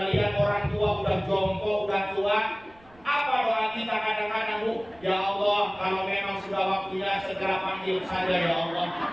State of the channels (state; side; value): noise; right; rumble, 28 dB below the sound